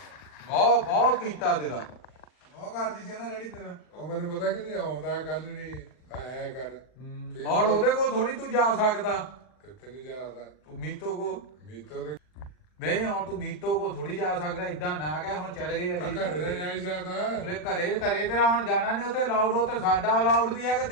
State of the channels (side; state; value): right; late; 40 ms